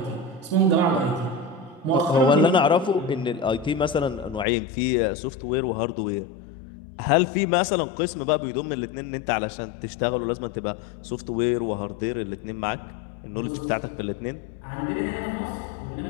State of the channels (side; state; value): right; drops out; at 4.5 s